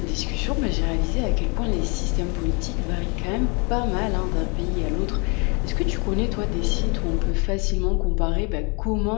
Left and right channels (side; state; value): right; quieter; 32.5 dB